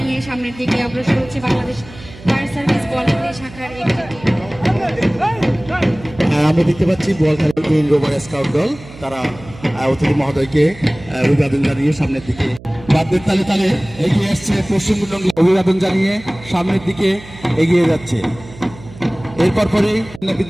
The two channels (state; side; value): noise; right; hum, 18 dB below the sound